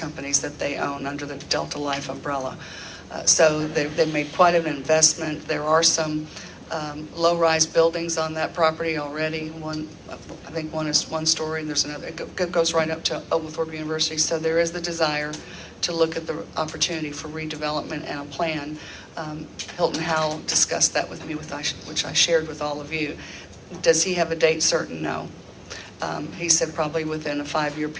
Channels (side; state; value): both; identical; correlation 1.00